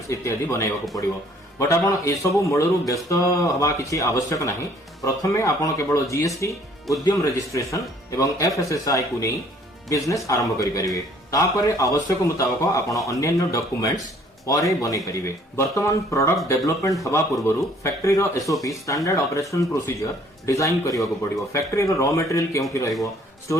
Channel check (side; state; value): both; normal; correlation 0.59